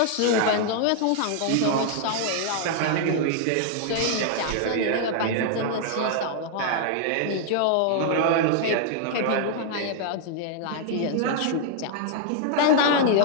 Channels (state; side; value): different; both; correlation -0.01